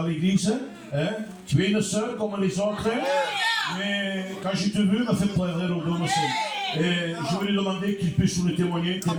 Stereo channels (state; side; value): identical; both; correlation 1.00